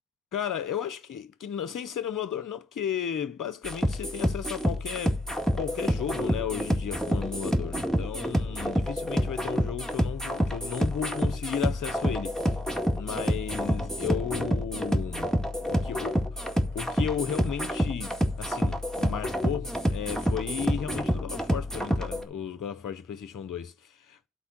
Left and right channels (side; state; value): both; normal; correlation 0.77